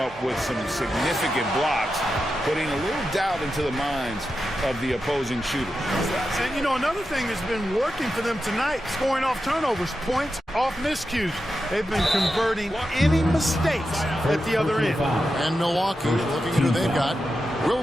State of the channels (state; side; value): normal; both; correlation 0.89